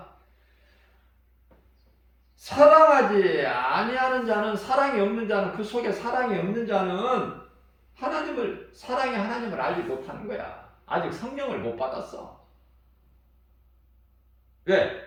사랑하지 아니하는 자는, 사랑이 없는 자는, 그 속에 사랑이 없는 자는 사랑의 하나님을 알지 못하는 거야. 아직 성령을 못 받았어. 왜?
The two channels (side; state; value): both; identical; correlation 1.00